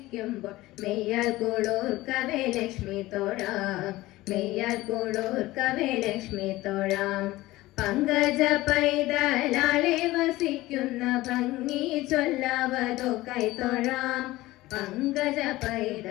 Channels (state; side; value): quieter; right; 18.1 dB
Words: മെയ്യാൽ കൂടോർക്കവേ ലക്ഷ്മി തൊഴാം മെയ്യാൽ കൂടോർക്കവേ ലക്ഷ്മി തൊഴാം പങ്കജ പൈതലാളെ വസിക്കുന്ന ഭംഗി ചൊല്ലാവതോ കൈതൊഴാം പങ്കജ